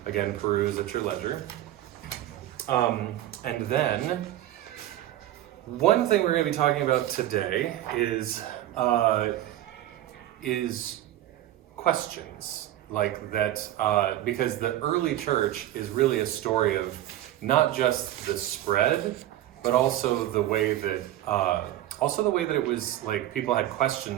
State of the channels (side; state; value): left; quieter; 13.7 dB